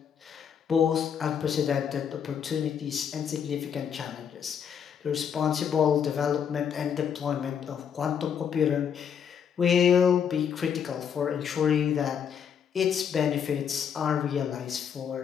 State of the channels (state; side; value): quieter; right; 7.8 dB